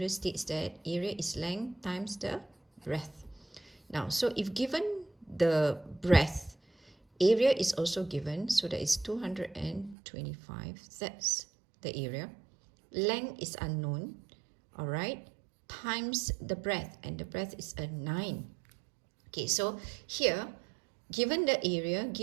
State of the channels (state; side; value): drops out; left; at 10.0 s